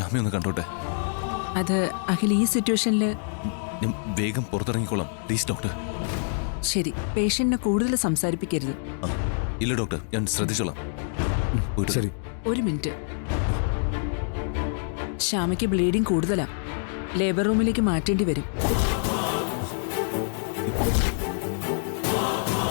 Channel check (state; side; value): silent; right; digital silence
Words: കണ്ടോട്ടെ. അത് അഖിൽ ഈ സിറ്റുവേഷനിൽ ഞാൻ വേഗം പുറത്തിറങ്ങിക്കോളാം പ്ലീസ് ഡോക്ടർ. ശരി, പേഷ്യന്റിനെ കൂടുതൽ സംസാരിപ്പിക്കരുത്. ഇല്ല ഡോക്ടർ, ഞാൻ ശ്രദ്ധിച്ചോളാം. ശരി. ഒരു മിനിറ്റ്. ശ്യാമയ്ക്ക് ബ്ലീഡിംഗ് കൂടുതലാ. ലേബർ റൂമിലേക്ക് മാറ്റേണ്ടി വരും.